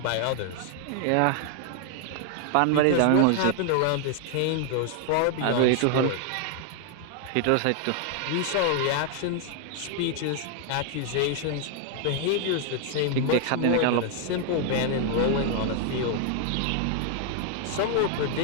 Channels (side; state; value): both; different; correlation 0.00